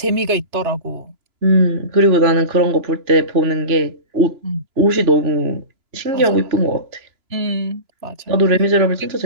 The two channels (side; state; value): left; late; 2.9 ms